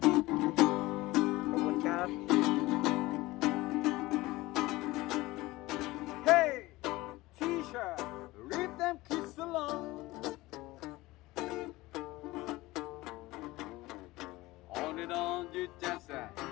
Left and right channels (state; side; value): quieter; right; 19.5 dB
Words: Hey, teacher, leave them kids alone. On it on you just